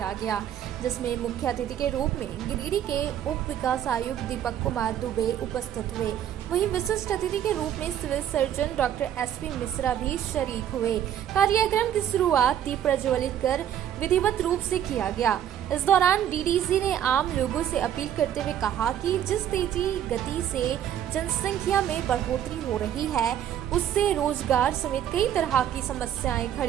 गया, जिसमें मुख्य अतिथि के रूप में गिरिडीह के उप विकास आयुक्त दीपक कुमार दुबे उपस्थित हुए। वहीं विशिष्ट अतिथि के रूप में civil surgeon doctor SP Mishra भी शरीक हुए। कार्यक्रम की शुरुआत दीप प्रज्वलित कर विधिवत रूप से किया गया। इस दौरान डीडीसी ने आम लोगों से अपील करते हुए कहा कि जिस तेजी गति से जनसंख्या में बढ़ोतरी हो रही है, उससे रोजगार समेत कई तरह की समस्याएं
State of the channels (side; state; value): left; quieter; 10.3 dB